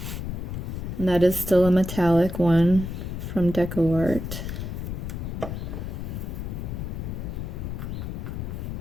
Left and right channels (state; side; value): noise; left; rumble, 5 dB below the sound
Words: And that is still a metallic one from Decoart.